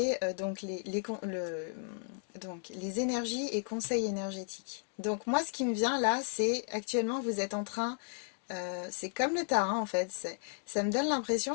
donc les énergies et conseils énergétiques. Donc moi, ce qui me vient là, c'est actuellement, vous êtes en train, c'est comme le tarot en fait, ça me donne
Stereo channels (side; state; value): right; silent; 55 dB below the other